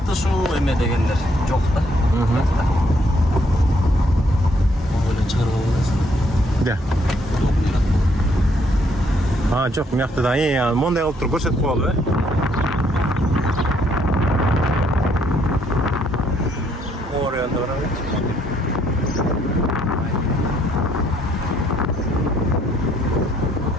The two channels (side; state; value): both; normal; correlation 0.69